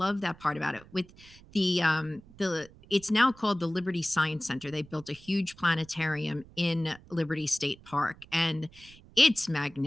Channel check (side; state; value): right; noise; rumble, 23 dB below the sound